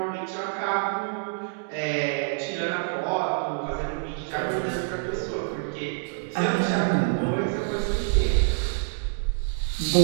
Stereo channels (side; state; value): left; silent; digital silence